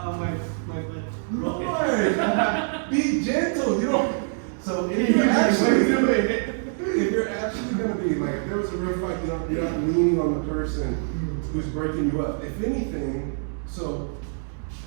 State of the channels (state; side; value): silent; left; 62 dB below the other